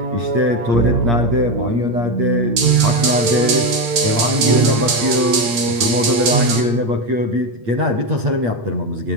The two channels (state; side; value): late; left; 9.0 ms